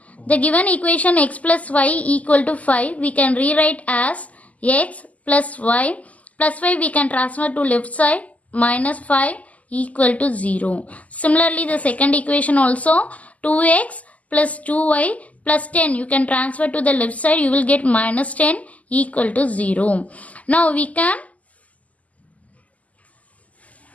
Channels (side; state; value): right; late; 0.073 ms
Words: The given equation x plus y equal to 5 we can rewrite as x plus y. Plus 5 we can transfer to left side, minus 5 equal to 0. Similarly the second equation also 2x plus 2y plus 10 you can transfer to the left side, you will get minus 10 equal to 0. Now we can